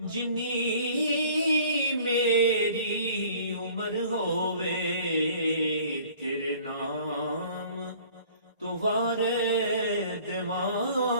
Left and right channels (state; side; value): inverted; both; correlation -0.51